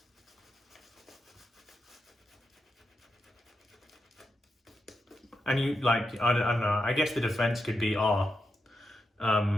And you, like, I don't know, I guess the defense could be,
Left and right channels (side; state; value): both; normal; correlation 0.86